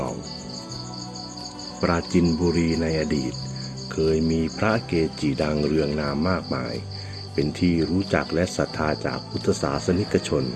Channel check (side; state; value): both; identical; correlation 1.00